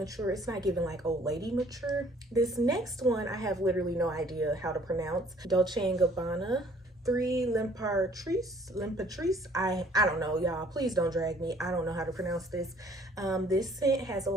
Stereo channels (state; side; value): normal; both; correlation 0.58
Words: It's not giving like old lady mature. This next one I have literally no idea how to pronounce. Dolce & Gabbana 3 L'Imperatrice. I don't know, y'all. Please don't drag me. I don't know how to pronounce this. This scent has a